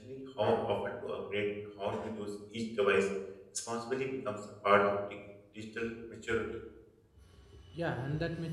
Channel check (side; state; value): both; identical; correlation 1.00